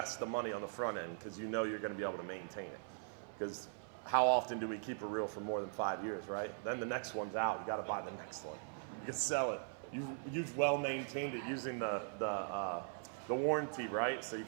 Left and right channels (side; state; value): left; silent; 51 dB below the other